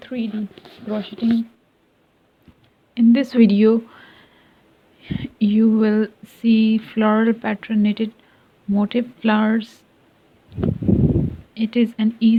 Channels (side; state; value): both; identical; correlation 1.00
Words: crocheting. In this video, you will see floral pattern knitted motif flowers. It is an